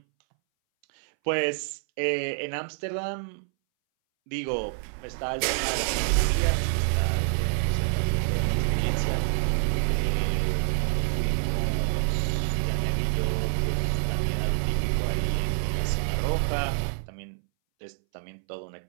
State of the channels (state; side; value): silent; left; 60 dB below the other